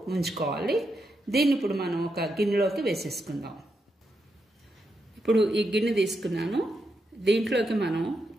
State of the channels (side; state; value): both; normal; correlation 0.84